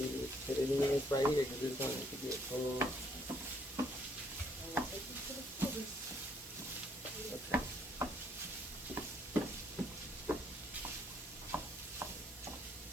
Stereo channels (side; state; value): both; normal; correlation 0.67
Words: put it in this right here because it's going to get full. Okay.